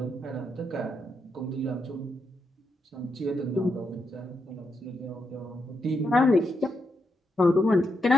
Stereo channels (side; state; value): both; normal; correlation 0.82